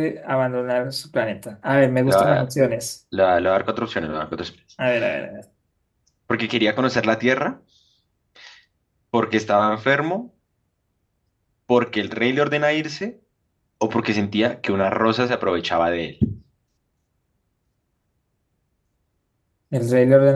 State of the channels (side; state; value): both; identical; correlation 1.00